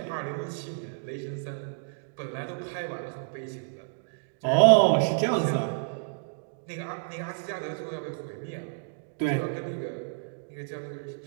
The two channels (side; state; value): left; silent; digital silence